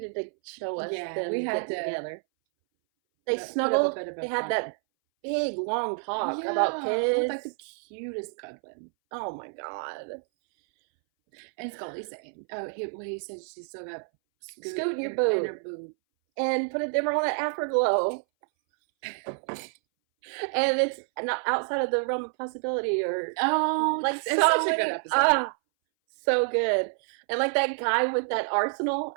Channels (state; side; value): silent; left; 59 dB below the other